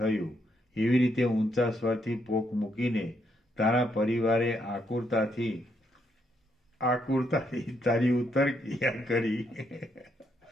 એવી રીતે ઊંચા સ્વરથી પોક મૂકીને તારા પરિવારે આકુરતાથી તારી ઉત્તર ક્રિયા કરી.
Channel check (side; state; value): both; normal; correlation 0.76